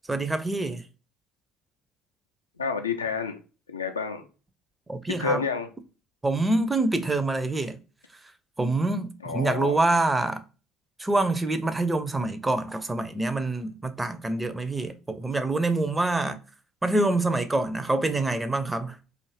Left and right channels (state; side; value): normal; both; correlation 0.74